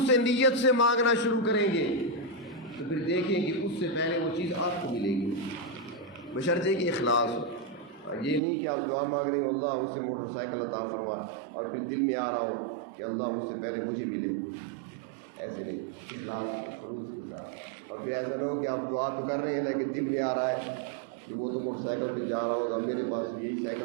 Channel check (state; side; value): drops out; left; at 8.4 s